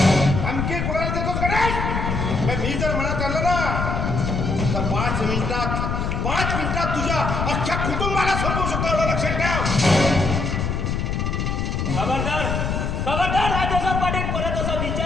धमकी कुणाला देतोस गणेश? मी जर म्हणत आलं ना तर 5 मिनिटात तुझ्या अख्ख्या कुटुंबाला संपवू शकतो, एवढं लक्षात ठेव. खबरदार खबरदार राजेश्वर पाटील, परत असा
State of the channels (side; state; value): left; noise; rumble, 1 dB below the sound